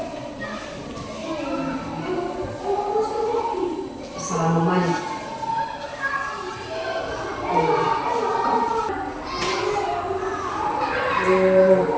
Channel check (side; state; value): both; identical; correlation 1.00